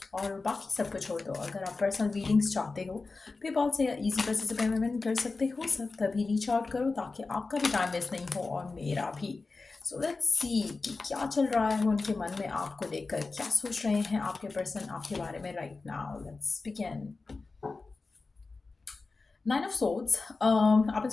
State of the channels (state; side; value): quieter; right; 3.9 dB